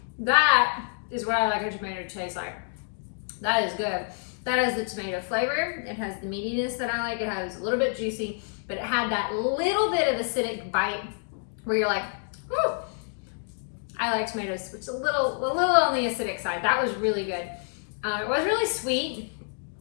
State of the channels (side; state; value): right; silent; 60 dB below the other